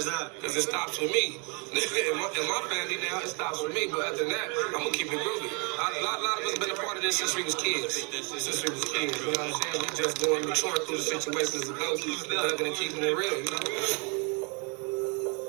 that? Because it stops with me. In my family now, it stops with me. But other than that, I'm going to keep it groovy. A lot of us have been a part of this since we was kids. You know what I'm saying? We just going maturing through the situations of those thugging and keeping it real, you know?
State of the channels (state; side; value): quieter; left; 34.3 dB